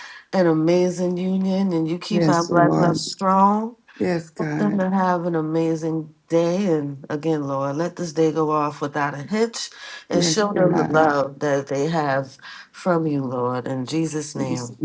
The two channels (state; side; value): identical; both; correlation 1.00